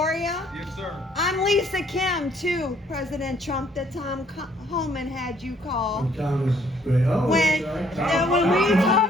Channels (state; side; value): normal; both; correlation 0.64